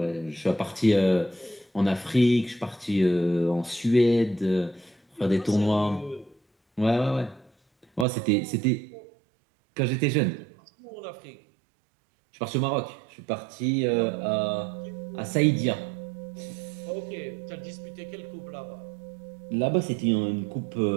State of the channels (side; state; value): left; drops out; at 8.1 s